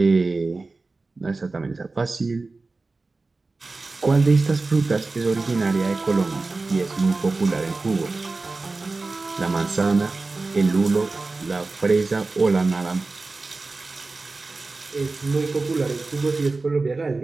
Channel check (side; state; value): left; quieter; 3.6 dB